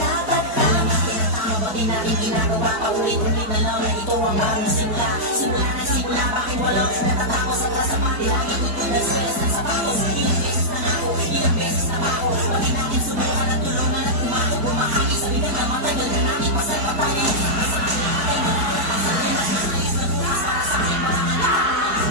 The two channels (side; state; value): left; late; 4.6 ms